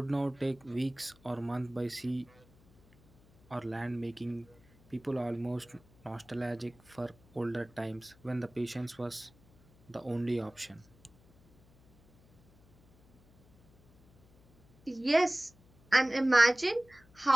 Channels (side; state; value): left; noise; hum, 28 dB below the sound